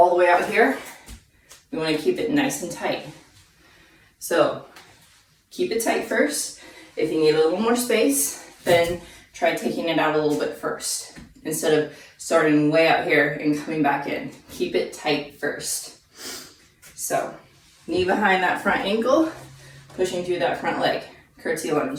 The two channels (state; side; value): identical; both; correlation 1.00